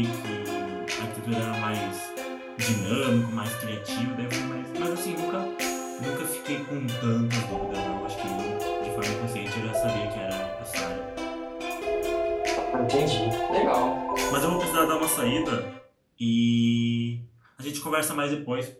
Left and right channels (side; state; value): both; identical; correlation 1.00